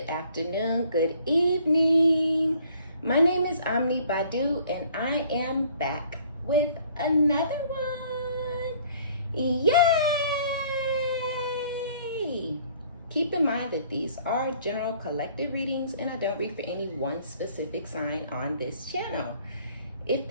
afternoon, good evening. My name is OmniBadu and I am back with another one. Yay! Keep in mind that these are general collective readings and I don't read for any one specific sign on this channel. If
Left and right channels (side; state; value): both; inverted; correlation -0.58